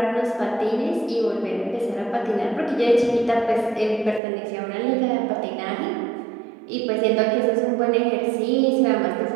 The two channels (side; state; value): left; drops out; at 4.2 s